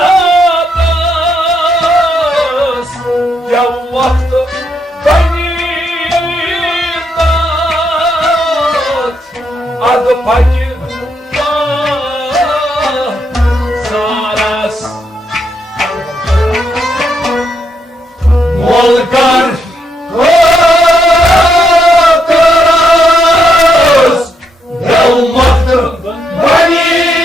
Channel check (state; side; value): normal; both; correlation 0.78